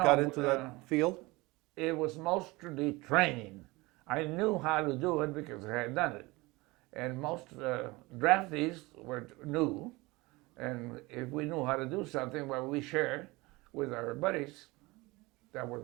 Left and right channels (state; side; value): quieter; left; 22.7 dB